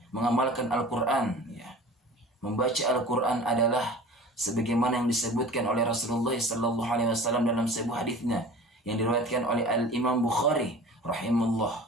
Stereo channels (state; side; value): normal; both; correlation 0.41